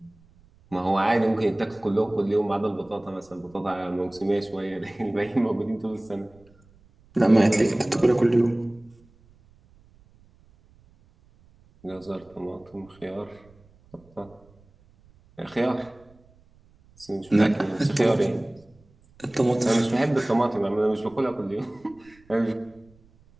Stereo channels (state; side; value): noise; right; rumble, 29 dB below the sound